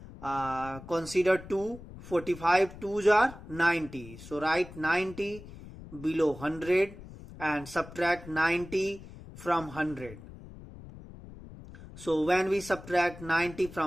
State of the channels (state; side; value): noise; left; rumble, 16 dB below the sound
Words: consider 2. 45 2s are 90. So write 90 below 100 and subtract 90 from 100. So when we subtract 90